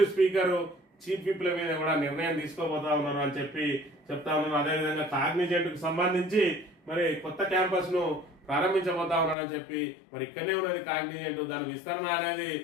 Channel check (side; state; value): right; drops out; at 9.3 s